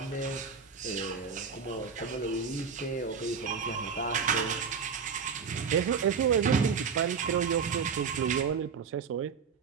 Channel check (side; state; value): left; quieter; 6.0 dB